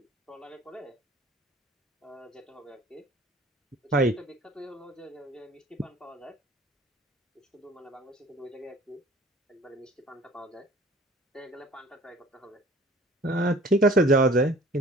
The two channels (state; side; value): normal; both; correlation 0.49